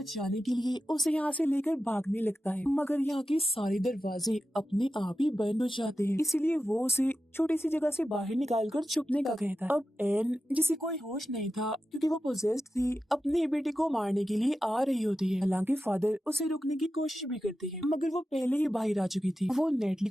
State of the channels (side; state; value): both; normal; correlation 0.92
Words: के लिए उसे यहाँ से लेकर भागने लगता है मगर यहाँ के सारे दरवाजे अपने आप ही बंद हो जाते हैं इसलिए वो उसे छोटी सी जगह से बाहर निकालकर छुपने का कहता है। अब एन जिसे कोई होश नहीं था क्योंकि वो पोजेस्ड थी अपनी बेटी को मारने के लिए आ रही होती है। हालांकि फादर उसे रोकने की कोशिश भी करते हैं मगर वो पहले ही बाहर आ चुकी थी। वो नेटली